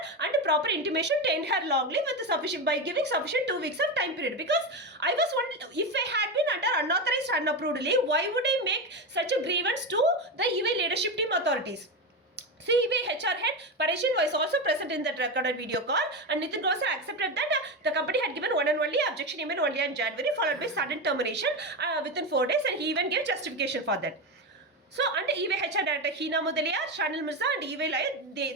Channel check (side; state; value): both; normal; correlation 0.16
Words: and proper intimation to end her long leave with sufficient by giving sufficient 2 weeks of time period. Because I was wondering, if I had been under unauthorized unapproved leave, why would I make such a grievance to the eBay leadership team authorities? eBay HR head Parishin was also present in that recorded video call, and Nitin Grover accepted that the company had given one and only objection email only on January, followed by sudden termination within 4 days, and he even gave justification for that. So under eBay HR director Hina Mudaliar, Shanil Mirza and eBay Lion,